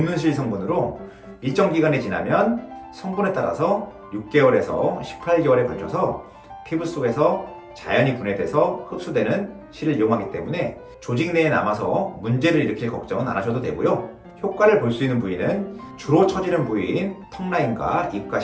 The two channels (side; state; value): both; identical; correlation 1.00